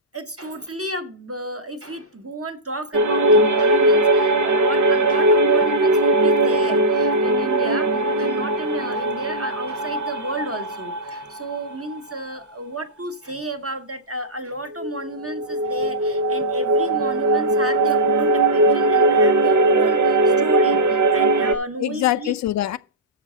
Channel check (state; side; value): normal; both; correlation -0.16